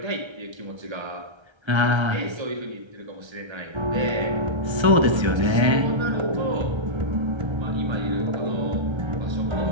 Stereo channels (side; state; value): left; late; 1.3 ms